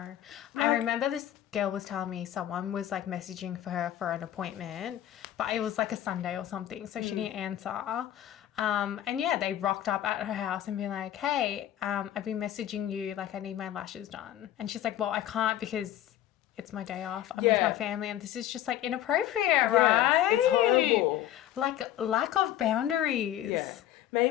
I remember this girl was telling me someone was like messaging for her for an appointment, but it was like a Sunday or something, so she didn't answer. And yeah, they rocked up at her house and be like, "Hey, I've been messaging you, like I need my lashes done." And she's like, "Well, I can't because it's my day off. I'm with my family, and this is just like inappropriate, right?" It's horrible. Like lack of boundaries. Yeah.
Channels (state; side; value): quieter; right; 12.2 dB